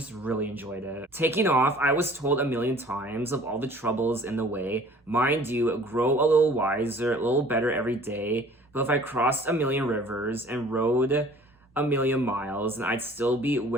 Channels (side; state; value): both; normal; correlation 0.50